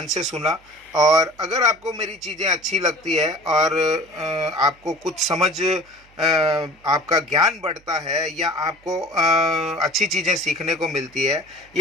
से सुना, और अगर आपको मेरी चीज़ें अच्छी लगती है और आपको कुछ समझ, आपका ज्ञान बढ़ता है, या आपको अच्छी चीज़ें सीखने को मिलती है,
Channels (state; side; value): noise; right; hum, 29 dB below the sound